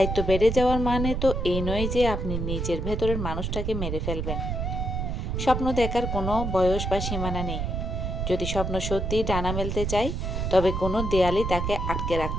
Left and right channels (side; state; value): right; noise; rumble, 2 dB below the sound